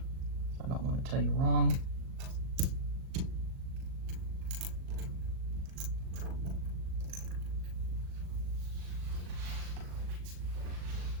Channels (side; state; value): left; late; 38 ms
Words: I don't want to tell you wrong.